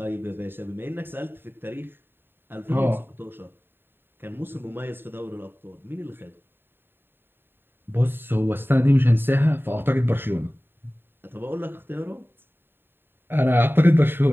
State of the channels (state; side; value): late; left; 0.10 ms